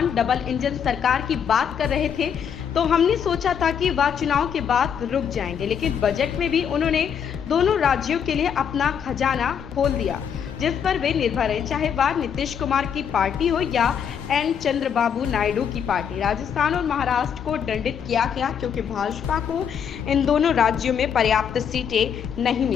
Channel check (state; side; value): quieter; right; 7.8 dB